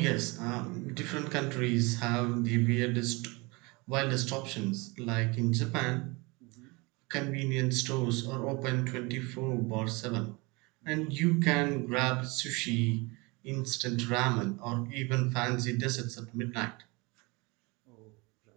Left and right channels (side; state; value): left; quieter; 26.3 dB